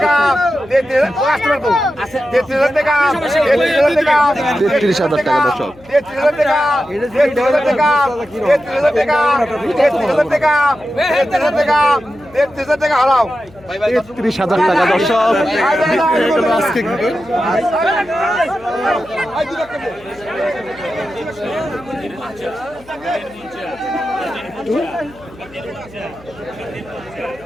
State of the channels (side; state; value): left; noise; hum, 24 dB below the sound